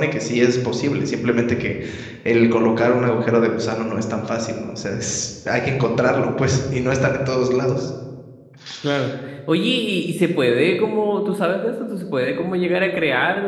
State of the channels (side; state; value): both; identical; correlation 1.00